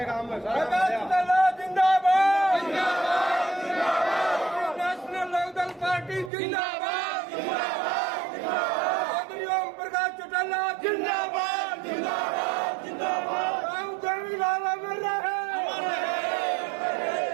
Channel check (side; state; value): left; drops out; at 6.3 s